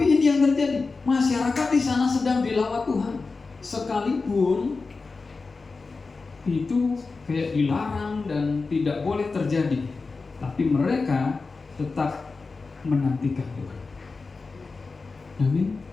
ini yang terjadi, masyarakat di sana sedang dilawat Tuhan, sekalipun itu kayak dilarang dan tidak boleh terjadi, tapi mereka tetap menantikan Tuhan. Amin.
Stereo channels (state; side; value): quieter; right; 4.1 dB